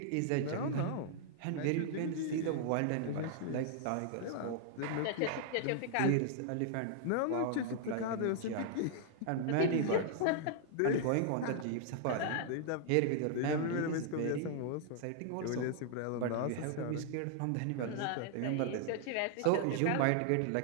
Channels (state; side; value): different; both; correlation -0.01